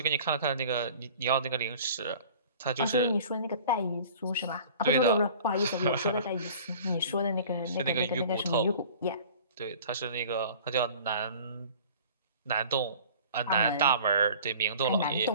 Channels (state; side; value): inverted; both; correlation -0.45